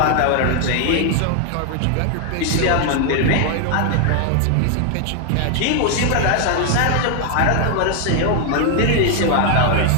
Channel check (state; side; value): different; both; correlation 0.00